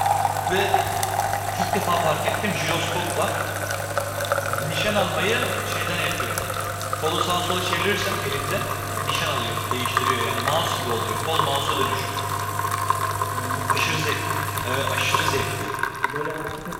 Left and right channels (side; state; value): both; identical; correlation 1.00